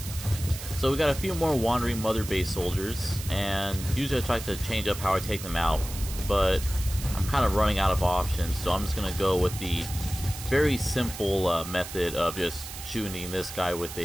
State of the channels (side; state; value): right; noise; hiss, 11 dB below the sound